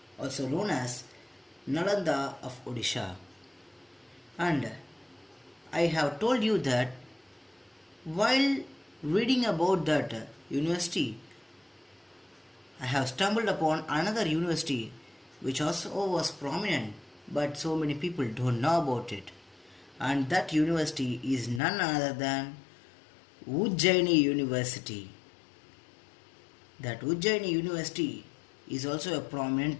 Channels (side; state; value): right; drops out; at 21.6 s